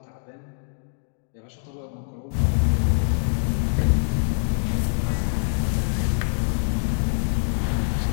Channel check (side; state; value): right; silent; digital silence